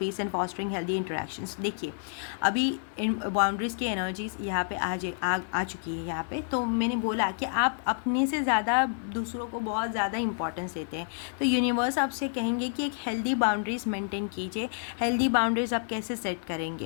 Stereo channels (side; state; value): right; silent; digital silence